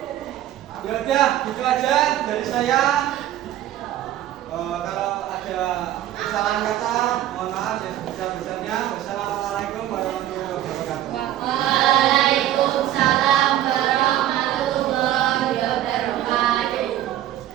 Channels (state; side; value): quieter; left; 12.8 dB